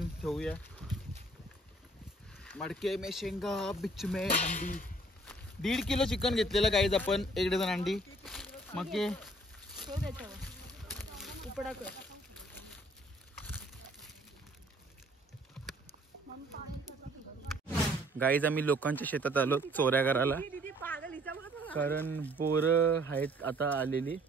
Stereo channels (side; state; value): both; normal; correlation 0.59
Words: ठेवूया. मडके में शेंगा बिच में अंडी. 1.5 किलो चिकन घेतलेलं गाईज आपण. 1 डझन अंडी. मग उपडा कर. गाईज आम्ही लोकांच्या शेतात आलो चोऱ्या करायला. कारण बोरं आहेत आता आलेली.